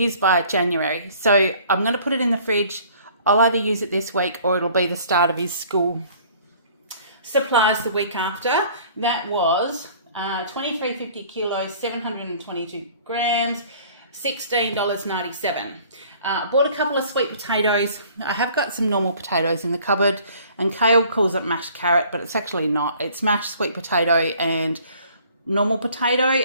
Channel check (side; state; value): both; inverted; correlation -0.53